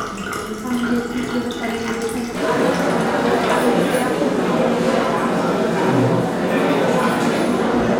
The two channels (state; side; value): identical; both; correlation 1.00